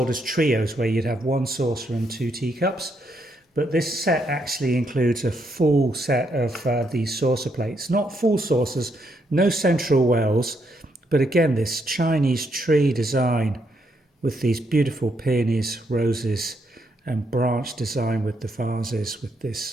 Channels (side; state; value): both; normal; correlation 0.76